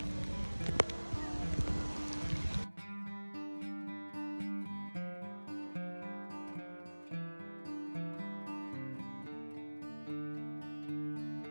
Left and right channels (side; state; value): both; inverted; correlation -1.00